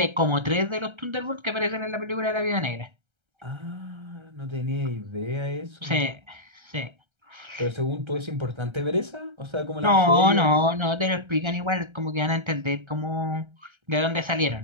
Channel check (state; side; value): late; left; 1.3 ms